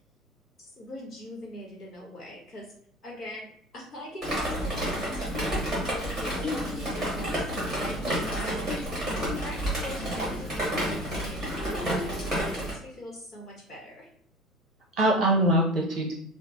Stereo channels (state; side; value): normal; both; correlation 0.37